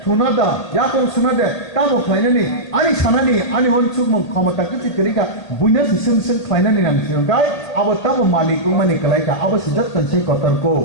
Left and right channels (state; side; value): late; right; 1.8 ms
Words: थुनादा याकं सुनादे तामो खायनानि आनी सानानि आनी हनसुगमु क्षमता किति तरिका बयनो सुसुं खायनानि नांसिगंगाय आबो तामो मालिकु मानि कलायका आबो सिजत कनसे कतरको